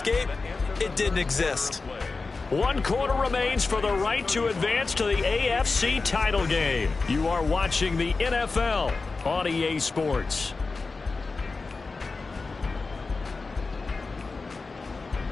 It didn't exist. 1 quarter remains for the right to advance to the AFC title game. You are watching the NFL on EA Sports.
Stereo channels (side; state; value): right; quieter; 4.0 dB